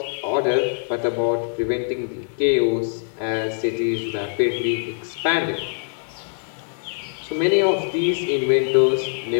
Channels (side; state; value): right; silent; 61 dB below the other